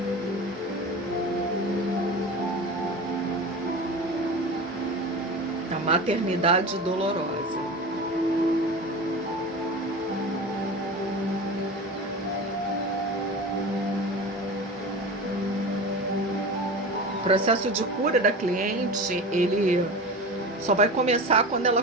A maternidade dolorosa. O processo de cura da cliente, ele só vai começar quando ela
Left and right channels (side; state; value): both; normal; correlation 0.30